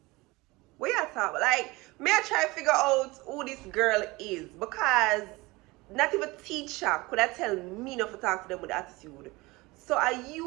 We are talking like me. I try to figure out who this girl is because not even teacher could I tell me not to talk to them with attitude. So are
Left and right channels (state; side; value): quieter; left; 22.5 dB